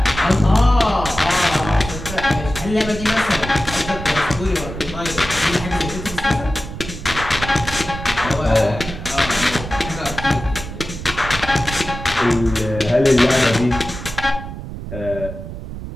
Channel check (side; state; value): right; noise; rumble, 10 dB below the sound